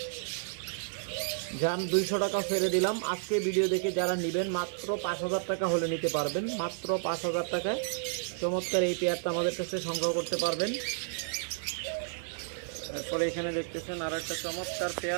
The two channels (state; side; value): silent; left; digital silence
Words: যান 200 টাকা ছেড়ে দিলাম। আজকে ভিডিও দেখে যারা নেবেন মাত্র 5000 টাকা হলে নিতে পারবেন। মাত্র 5000 টাকায় চমৎকার এই পেয়ারটা আমাদের কাছে সংগ্রহ করতে পারবেন। এরপরে এখানে দেখতেছেন আরও একটা চমৎকার